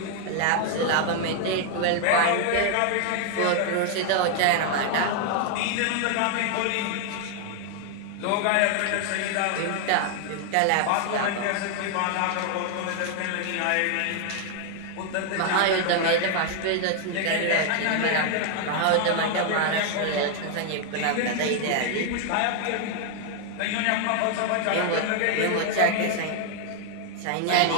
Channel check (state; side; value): different; both; correlation 0.00